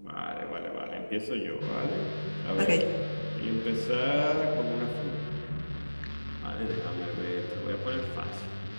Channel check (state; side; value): inverted; both; correlation -1.00